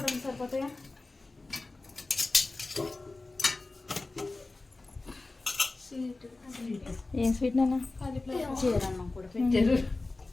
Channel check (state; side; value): quieter; right; 3.3 dB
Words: సరిపోతాయా? ఏం స్వీట్ నాన్న?